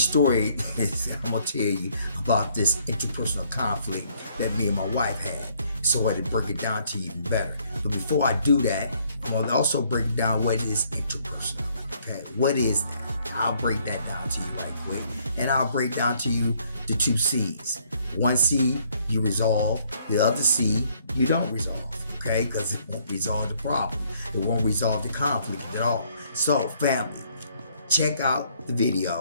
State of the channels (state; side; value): inverted; both; correlation -0.66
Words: is, I'm going to tell you about this interpersonal conflict that me and my wife had, so I had to break it down to you even better. But before I do that, I'm going to also break down what is interpersonal. Okay, what is that? I'll break that down to you right quick, and I'll break down to you the two C's. One C, you resolve. The other C, you don't resolve. Okay, because it won't resolve the problem. It won't resolve the conflict at all. So, family, check out the